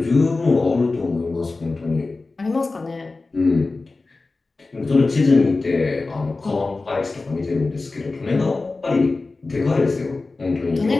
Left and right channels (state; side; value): quieter; right; 3.6 dB